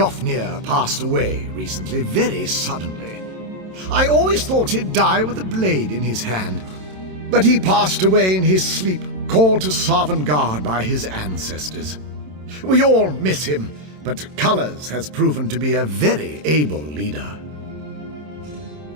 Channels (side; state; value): left; late; 27 ms